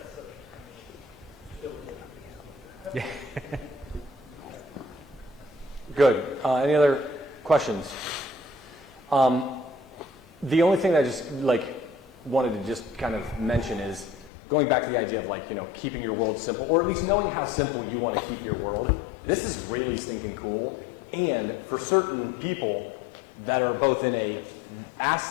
Yeah. Good. Any other questions? The only thing that I just wanted to just kind of mention is going back to the idea of keeping your world simple, or at least knowing how simple you want to keep your world. This is really stinking cool. And for certain people that are both in a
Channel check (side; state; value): right; drops out; at 14.3 s